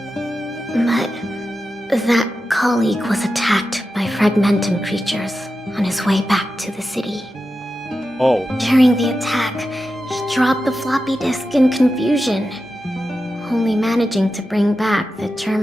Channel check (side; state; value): both; normal; correlation 0.91